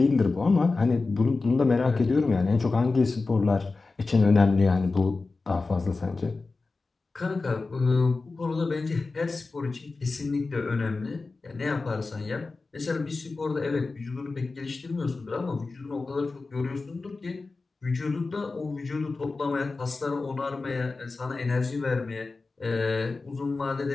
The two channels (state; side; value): quieter; right; 3.8 dB